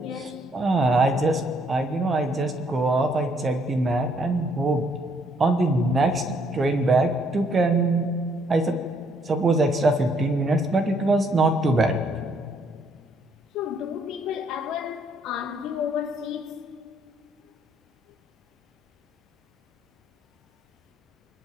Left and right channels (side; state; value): both; normal; correlation 0.68